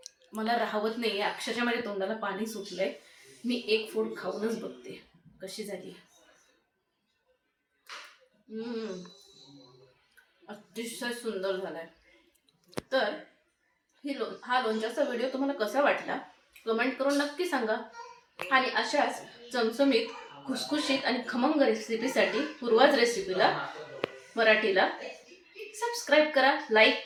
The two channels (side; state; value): both; identical; correlation 1.00